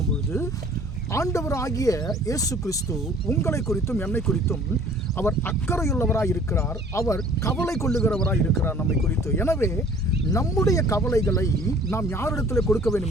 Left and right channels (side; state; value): both; normal; correlation 0.52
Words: ஆண்டவராகிய இயேசு கிறிஸ்து உங்களை குறித்தும் என்னை குறித்தும் அவர் அக்கறையுள்ளவராய் இருக்கிறார். அவர் கவலை கொள்ளுகிறவராய் இருக்கிறார் நம்மை குறித்து. எனவே நம்முடைய கவலைகளை நாம் யாரிடத்தில் கொடுக்க